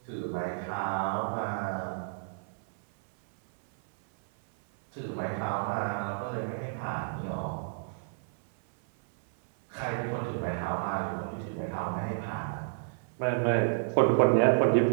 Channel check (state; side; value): silent; left; 57 dB below the other